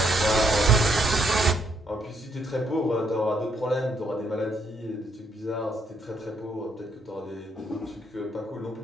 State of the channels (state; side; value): normal; both; correlation 0.73